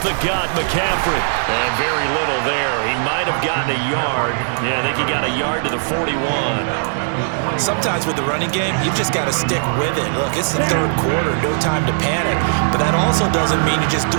the gut, McCaffrey. And very little there. He might have gotten a yard. Yeah, I think he got a yard to the 41. Sometimes with the running game, you've just got to stick with it. Look, it's the 3rd quarter, no time to panic. But that also doesn't mean you just do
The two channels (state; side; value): silent; left; digital silence